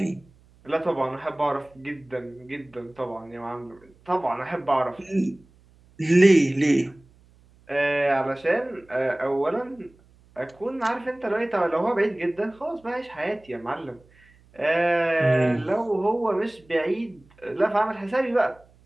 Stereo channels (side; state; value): right; noise; hum, 29 dB below the sound